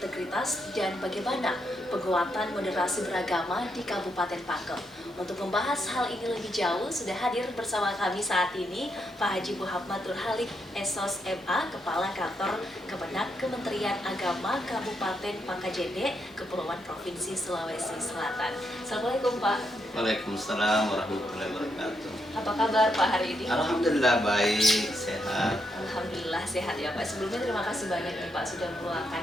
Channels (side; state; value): both; normal; correlation 0.80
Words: dan bagaimana penguatan moderasi beragama di Kabupaten Pangkep. Untuk membahas hal ini lebih jauh, sudah hadir bersama kami saat ini Pak Haji Muhammad Nurhalik, SOS MA, Kepala Kantor Kemenak Kementerian Agama Kabupaten Pangkajene, Kepulauan Provinsi Sulawesi Selatan. Assalamualaikum Pak. Waalaikumsalam warahmatullahi wabarakatuh. Apa kabar Pak hari ini? Alhamdulillah baik, sehat. Alhamdulillah sehat ya Pak. Sebelumnya terima kasih banyak nih Pak sudah